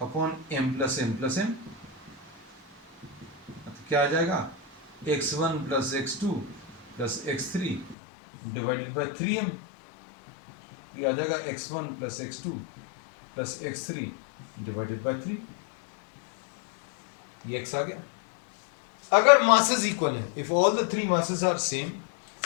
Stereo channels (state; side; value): drops out; right; at 8.0 s